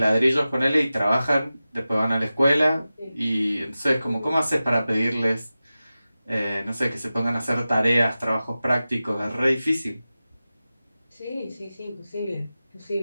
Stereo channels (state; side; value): inverted; both; correlation -0.95